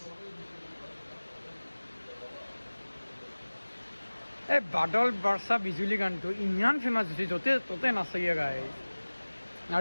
এই বাদল বৰ্ষা বিজুলী গানটো ইমান ফেমাছ হৈছে য'তে ত'তে নাচায়ে গাইজ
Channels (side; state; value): both; inverted; correlation -1.00